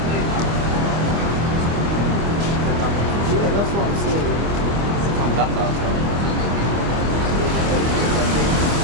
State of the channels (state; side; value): late; left; 25 ms